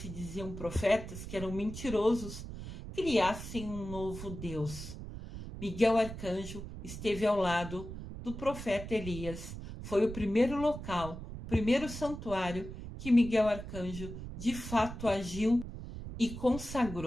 diziam profetas, que eram mentirosos, criassem um novo Deus. Miguel Arcanjo esteve ao lado do profeta Elias. Foi o primeiro local, o primeiro santuário que Miguel Arcanjo de fato agiu e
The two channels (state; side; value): noise; right; rumble, 10 dB below the sound